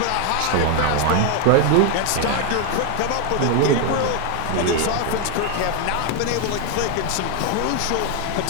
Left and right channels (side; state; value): both; different; correlation 0.01